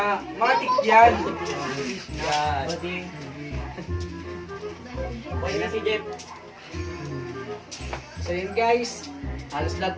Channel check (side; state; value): both; identical; correlation 1.00